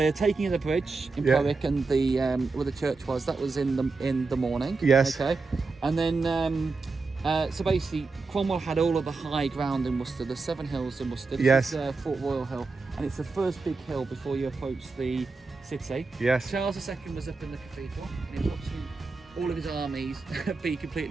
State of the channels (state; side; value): quieter; left; 4.0 dB